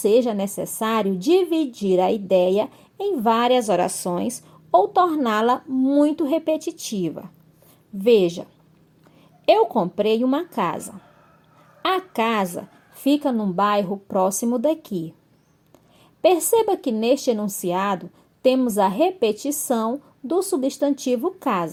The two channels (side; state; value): both; identical; correlation 1.00